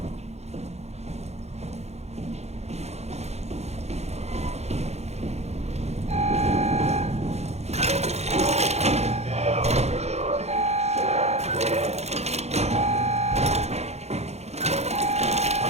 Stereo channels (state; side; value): late; left; 0.31 ms